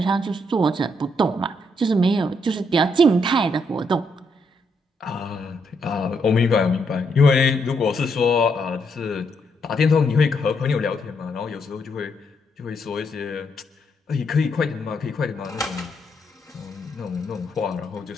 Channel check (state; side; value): normal; both; correlation 0.76